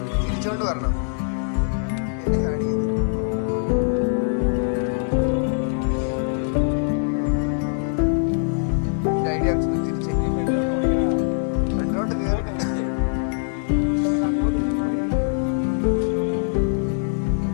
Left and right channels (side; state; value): right; silent; 64 dB below the other